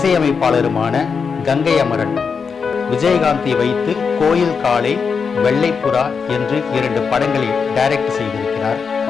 கங்கை அமரன் விஜயகாந்தை வைத்து கோயில் காளை, வெள்ளைப்புறா என்று 2 படங்களை டைரக்ட் செய்திருக்கிறார்.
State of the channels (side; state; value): right; quieter; 5.7 dB